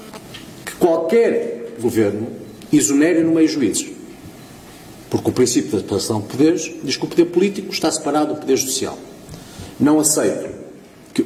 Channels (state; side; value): identical; both; correlation 1.00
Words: que qualquer governo exonere no meio juízes. Porque o princípio da separação de poderes diz que o poder político está separado do poder judicial. Não aceito que